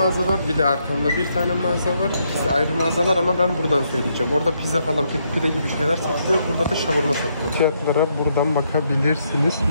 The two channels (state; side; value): inverted; both; correlation -0.76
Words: var. Bir de arkamda bir tane mağaza var. İkisi ayrı mağazalar ama ben buradan söyleyeceğim. Orada pizza falan, pide gibi şeyler satılıyor. Burada da şavurma satılıyor. Fiyatlara buradan bakabilirsiniz.